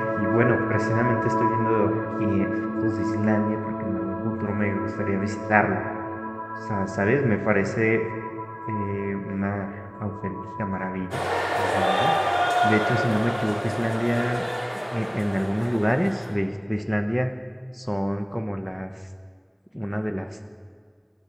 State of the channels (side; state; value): both; identical; correlation 1.00